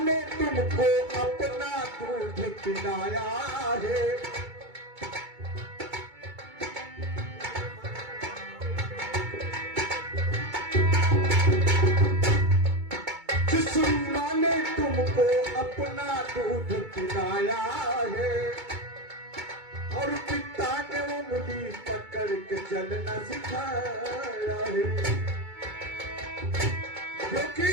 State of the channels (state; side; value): late; left; 2.2 ms